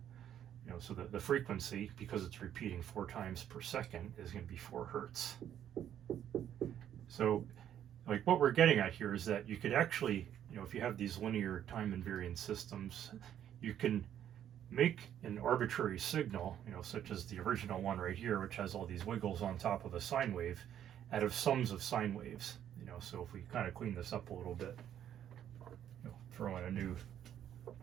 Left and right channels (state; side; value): quieter; left; 10.3 dB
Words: so the frequency, because it's repeating 4 times per second, is going to be 4 hertz. So like what we're getting at here is that you could actually, if you have these linear time invariant systems, you can make an arbitrary signal, such as the original one right here, which has all these wiggles on top of a sine wave, out of sums of sine waves. So if we kind of clean this up a little bit, throw in a new